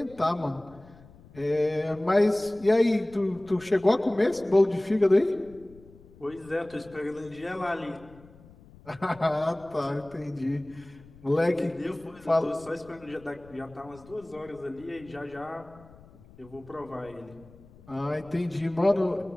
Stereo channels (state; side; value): noise; left; rumble, 23 dB below the sound